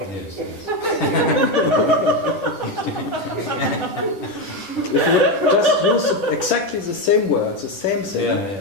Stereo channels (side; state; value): right; late; 10 ms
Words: Yes. If you would just use exactly the same words, the same thing,